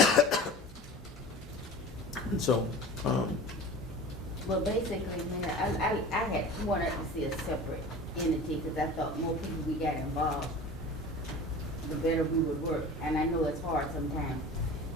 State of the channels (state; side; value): normal; both; correlation 0.37